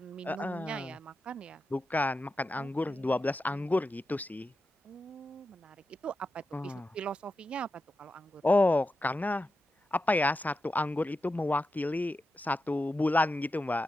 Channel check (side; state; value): both; normal; correlation 0.89